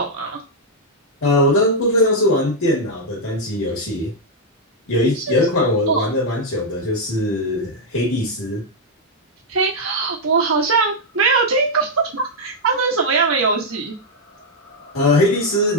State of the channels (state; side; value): normal; both; correlation -0.02